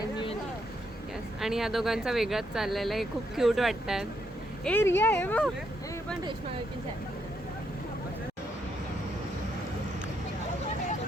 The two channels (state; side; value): normal; both; correlation 0.77